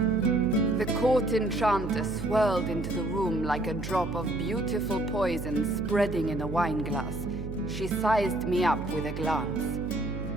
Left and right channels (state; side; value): noise; right; hum, 7 dB below the sound